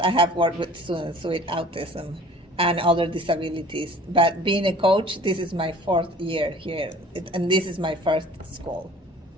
have worked with students with autism and other disabilities. But being a coach, this is my fourth year here, and this is my first school.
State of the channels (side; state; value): both; normal; correlation 0.48